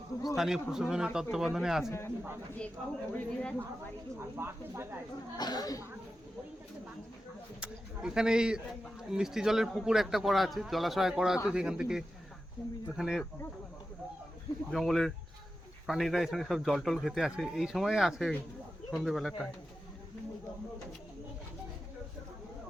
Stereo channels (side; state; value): both; normal; correlation 0.92